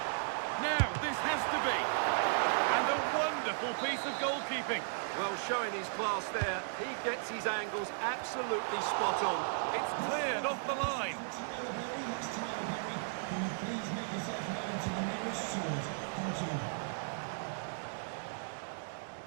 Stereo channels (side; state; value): left; silent; digital silence